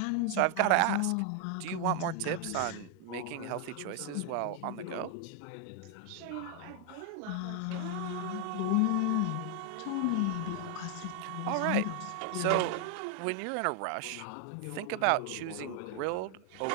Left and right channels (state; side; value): different; both; correlation 0.00